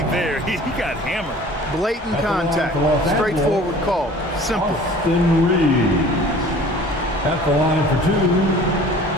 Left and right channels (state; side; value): normal; both; correlation 0.47